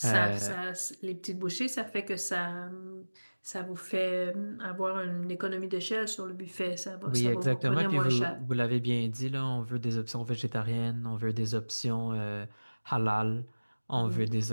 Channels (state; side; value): inverted; both; correlation -1.00